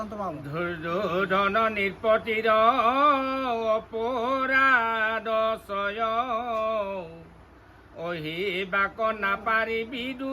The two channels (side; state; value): both; identical; correlation 1.00